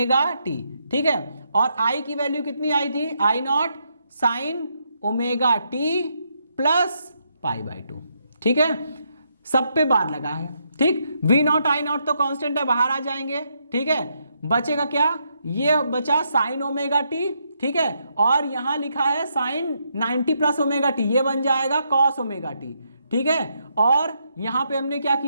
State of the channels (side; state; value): both; inverted; correlation -0.78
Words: t, ठीक है, और I की वैल्यू कितनी आई थी, I not sine omega T plus pi by 2, ठीक है। सब पे बार लगा है, ठीक। V नॉट I नॉट तो कांस्टेंट है, बाहर आ जाएंगे, ठीक है। बचेगा क्या, ये बचा साइन ओमेगा टी, ठीक है, और यहां लिखा है साइन 90 प्लस ओमेगा टी, ये बन जाएगा कॉस ओमेगा टी, ठीक है। और यहां पे हमने क्या